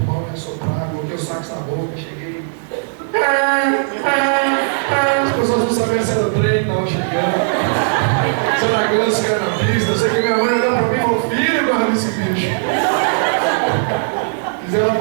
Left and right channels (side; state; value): left; silent; digital silence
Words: e assoprar, coloquei o sax na boca, cheguei. As pessoas não sabiam se era o trem que estava chegando. Se era ganso que era na pista. Eu sei que minha mãe olhou para mim e falou: filho, guarda esse bicho. Fizeram